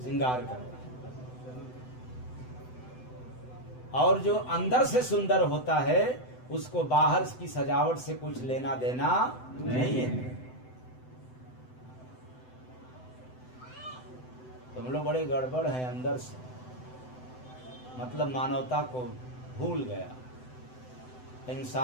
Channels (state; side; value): late; right; 7.9 ms